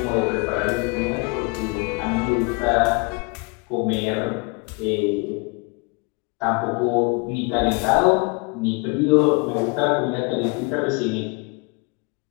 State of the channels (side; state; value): right; quieter; 31.2 dB